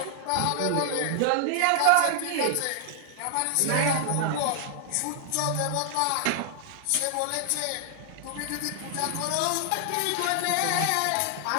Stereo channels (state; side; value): different; both; correlation 0.00